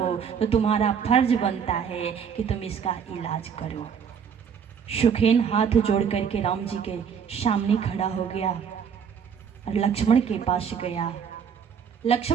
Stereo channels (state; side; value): quieter; left; 7.2 dB